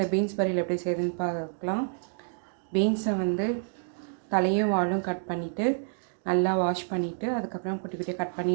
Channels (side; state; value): left; silent; digital silence